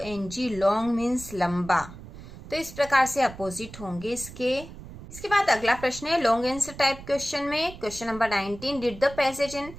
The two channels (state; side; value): noise; right; rumble, 15 dB below the sound